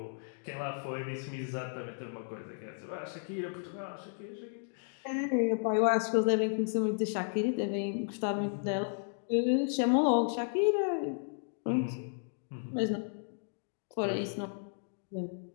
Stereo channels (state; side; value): silent; right; digital silence